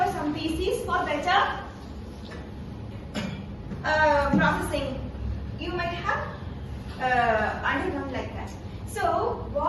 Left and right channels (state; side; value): identical; both; correlation 1.00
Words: or some PCs for better processing. You might have undergone like that. So